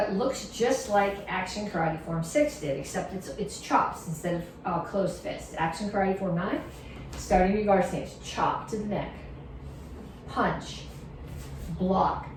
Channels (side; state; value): both; identical; correlation 1.00